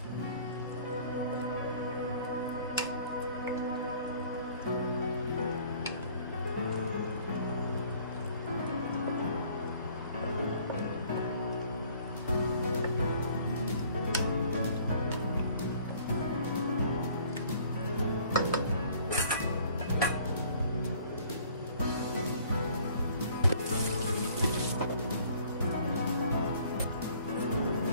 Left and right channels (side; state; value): both; inverted; correlation -0.55